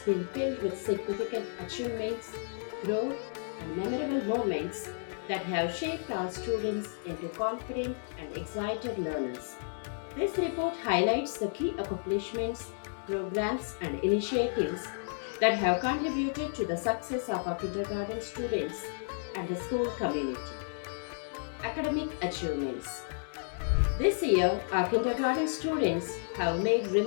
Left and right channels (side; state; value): right; silent; digital silence